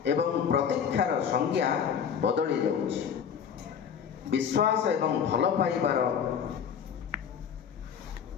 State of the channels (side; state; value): right; quieter; 7.6 dB